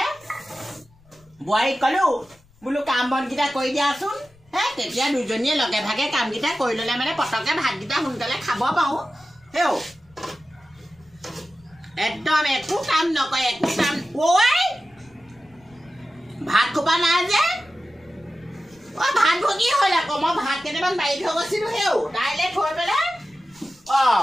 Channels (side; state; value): left; noise; rumble, 30 dB below the sound